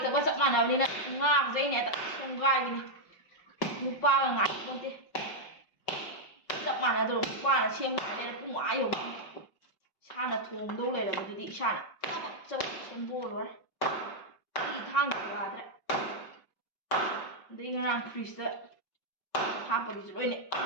ꯆꯞ ꯃꯥꯟꯅꯕꯅꯤꯅ ꯉꯥꯒꯁꯦ ꯑꯩꯅ ꯍꯦꯛꯇ ꯁꯦꯝꯒꯥꯏꯕꯅꯤ ꯅꯨꯄꯥꯒ ꯉꯥꯏꯄꯣꯟꯇꯦ ꯆꯞ ꯃꯥꯟꯅꯗ꯭ꯔꯣ ꯅꯨꯄꯥꯅ ꯁꯦꯝꯒꯥꯏꯔꯦ ꯄꯨꯡ ꯑꯥ ꯌꯧꯅꯤ ꯏꯁꯥꯅ ꯊꯣꯡꯗꯧ ꯂꯩꯔꯕꯗꯨꯗꯤ ꯏꯁꯥꯅ ꯆꯕꯛ ꯁꯦꯝꯗꯣꯛꯑ ꯂꯣꯏꯔꯦ ꯑꯩ ꯊꯥꯡꯁꯨ ꯌꯥꯗ꯭ꯔꯦ ꯑꯗꯩ ꯉꯔꯥꯡ ꯐ꯭ꯔꯤꯖꯇ ꯍꯥꯞꯄꯒꯤꯁꯨ ꯂꯣꯏꯅ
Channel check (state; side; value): late; right; 5.4 ms